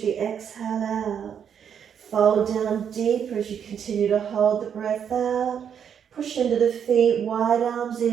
the exhale out. Fold down deeper as you continue to hold the breath out. Push into the feet, wide arms,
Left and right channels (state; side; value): quieter; left; 8.1 dB